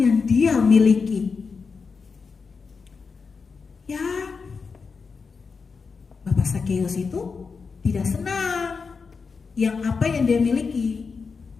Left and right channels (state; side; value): quieter; right; 5.1 dB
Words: dia miliki? Ya, Bapak Sakeus itu tidak senang yang apa yang dia miliki.